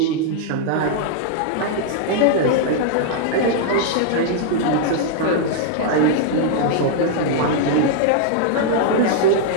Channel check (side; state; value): both; different; correlation -0.01